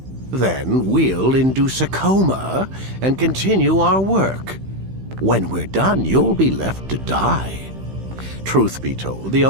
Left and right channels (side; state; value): left; late; 15 ms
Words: Then we'll induce a coma and continue our work. When we're done, you'll be left to die. Truth be told, the